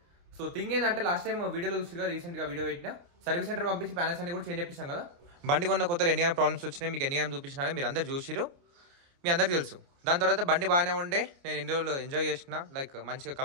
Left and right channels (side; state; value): left; late; 29 ms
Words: సో థింగ్ ఏంటంటే, లాస్ట్ టైం వీడియోలో చూసిగా రీసెంట్ గా వీడియో పెట్టినా సర్వీస్ సెంటర్ పంపించి ప్యానల్స్ అన్ని కూడా చేంజ్ చేపించాం కదా. బండి కొన్న కొత్త ఎన్ని ప్రాబ్లమ్స్ వచ్చినాయి మీకు ఎన్ని చూపించినా మీరు అందరు చూసిరు, మీ అందరికి తెలుసు. దాని తర్వాత బండి బాగానే ఉండే, నేను ఇన్ని రోజులు ఎంజాయ్ చేసిన, లైక్ మంచిగా